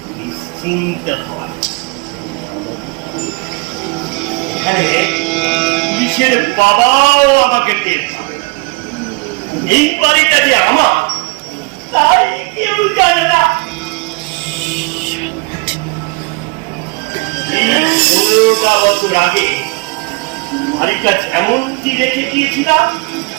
নিশ্চিন্ত হয়। এখানে পুলিশের বাবাও আমাকে টের পাবে। এই বাড়িটা যে আমার তাই কেউ জানে না। 15টা বছর আগে বাড়িটা যেমনটি রেখে দিয়েছিলাম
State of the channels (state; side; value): quieter; left; 28.7 dB